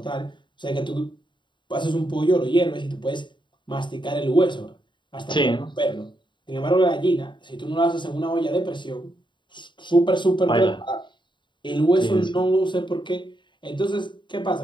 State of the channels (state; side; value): late; right; 0.23 ms